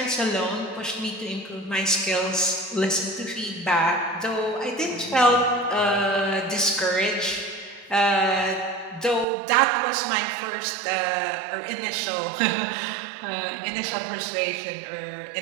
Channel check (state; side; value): drops out; left; at 9.2 s